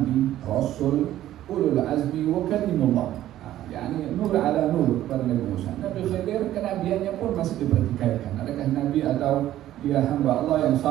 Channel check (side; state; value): left; quieter; 13.2 dB